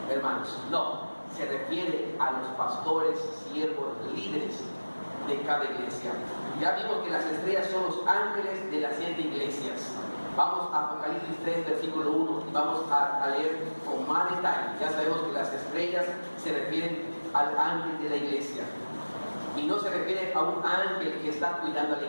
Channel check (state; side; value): inverted; both; correlation -1.00